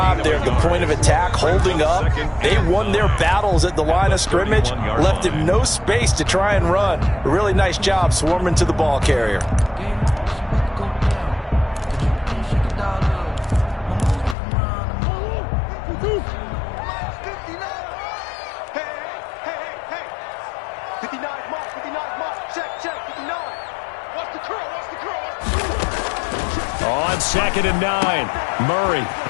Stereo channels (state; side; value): drops out; right; at 14.4 s